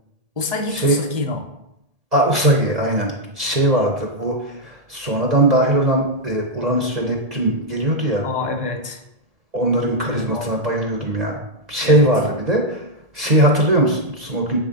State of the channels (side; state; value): left; late; 1.8 ms